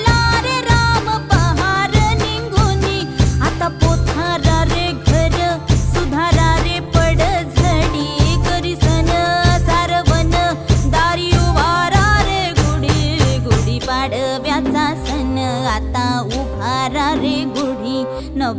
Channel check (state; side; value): identical; both; correlation 1.00